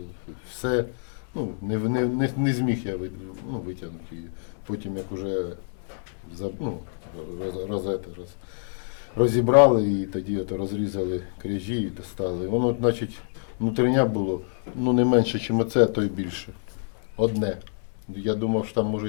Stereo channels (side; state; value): right; silent; digital silence